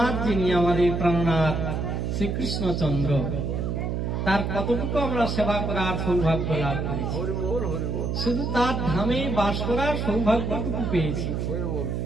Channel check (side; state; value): right; noise; hum, 1 dB below the sound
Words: যিনি আমাদের প্রাণনাথ শ্রীকৃষ্ণচন্দ্র, তার কতটুকু আমরা সেবা করার সৌভাগ্য লাভ করেছি। শুধু তার ধামে বাস করার সৌভাগ্যটুকু পেয়েছি।